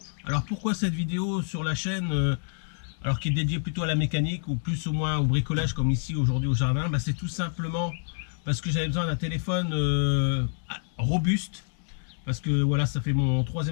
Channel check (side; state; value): right; silent; digital silence